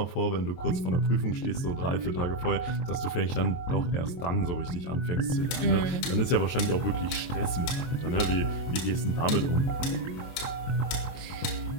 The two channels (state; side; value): late; right; 23 ms